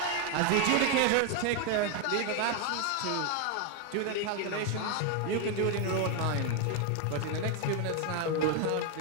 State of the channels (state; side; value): different; both; correlation 0.01